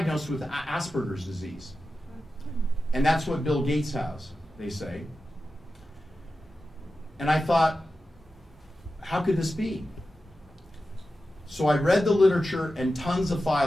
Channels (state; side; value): normal; both; correlation 0.92